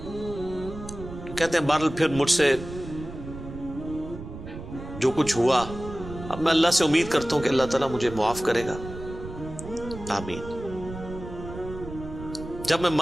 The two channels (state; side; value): noise; right; rumble, 11 dB below the sound